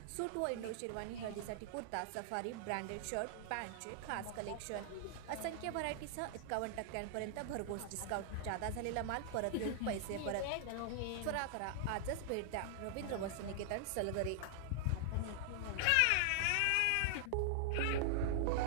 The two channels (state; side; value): different; both; correlation -0.01